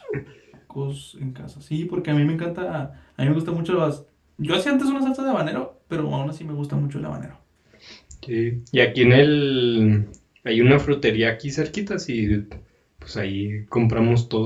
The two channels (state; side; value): identical; both; correlation 1.00